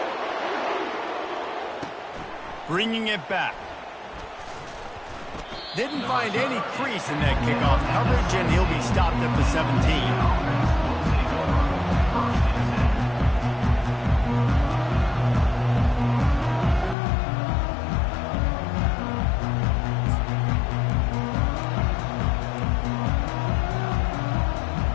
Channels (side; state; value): right; drops out; at 16.9 s